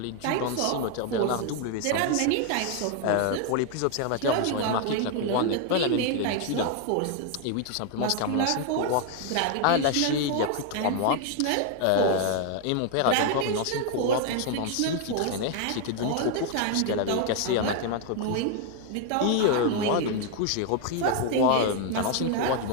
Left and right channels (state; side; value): different; both; correlation 0.01